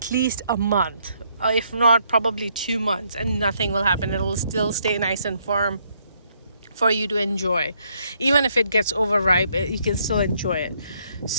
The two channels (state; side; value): inverted; both; correlation -0.71